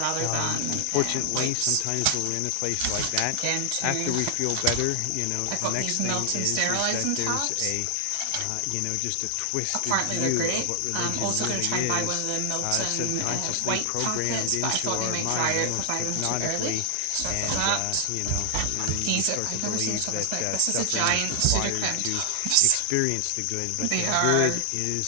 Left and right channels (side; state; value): both; different; correlation 0.00